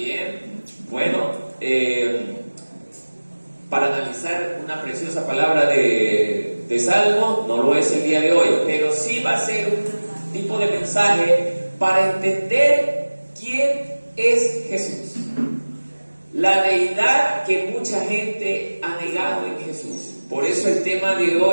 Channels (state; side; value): inverted; both; correlation -1.00